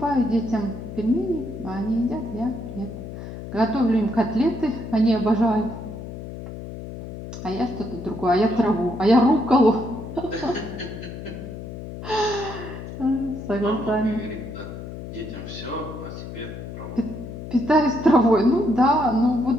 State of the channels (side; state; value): left; noise; hum, 10 dB below the sound